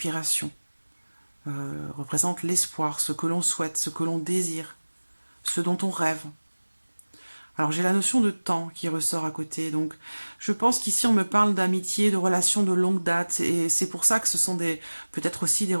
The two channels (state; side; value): inverted; both; correlation -1.00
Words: Représente l'espoir, ce que l'on souhaite, ce que l'on désire, ce dont on rêve. Alors j'ai la notion de temps qui ressort à côté, donc je pense qu'ici on me parle d'amitié, de relations de longue date, et c'est pour ça que ce sont peut-être aussi des